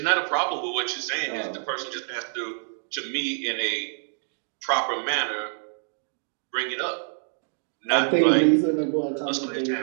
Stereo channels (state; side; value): silent; left; digital silence